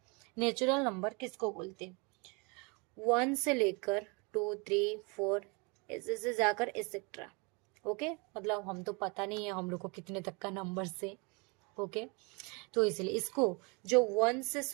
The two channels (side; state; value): left; quieter; 30.4 dB